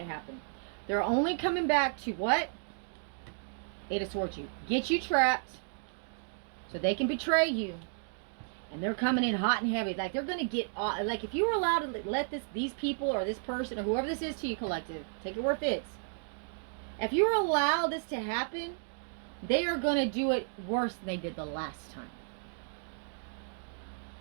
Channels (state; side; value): silent; left; digital silence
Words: happen. They're only coming back to what? Eight of Swords, you get you trapped so they can betray you, and they're coming in hot and heavy. Like they're gonna get like if you were allowed to let these people or this person or whoever this is to you, collective, take it where it fits. If you were allowed this to happen, they are gonna do it worse than they did the last time.